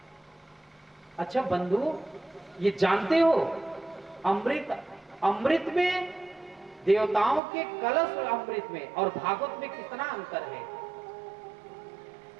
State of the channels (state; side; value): drops out; left; at 7.4 s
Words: अच्छा बंधु, ये जानते हो अमृत में, देवताओं के कलश अमृत में और भागवत में कितना अंतर है?